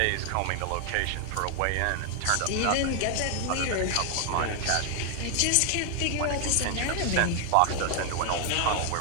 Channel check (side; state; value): both; different; correlation 0.00